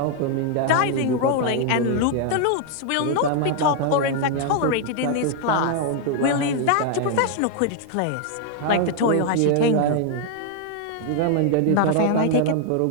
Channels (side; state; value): both; different; correlation 0.00